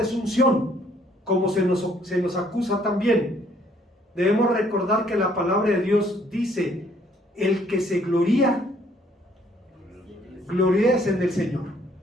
como se nos acusa también. Debemos recordar que la palabra de Dios dice: el que se gloría, gloríese en el Señor.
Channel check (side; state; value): both; normal; correlation 0.64